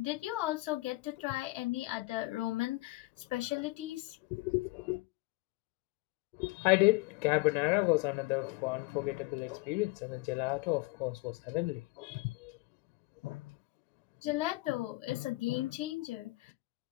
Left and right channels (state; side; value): quieter; right; 22.2 dB